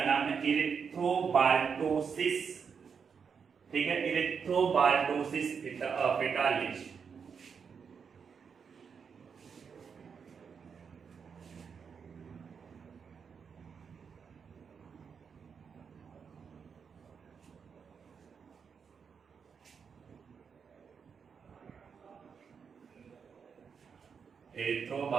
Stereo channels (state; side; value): quieter; left; 6.3 dB